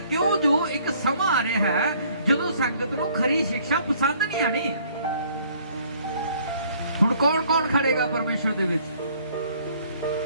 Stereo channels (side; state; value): both; inverted; correlation -0.60